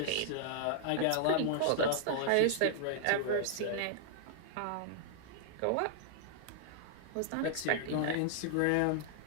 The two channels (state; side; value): different; both; correlation -0.01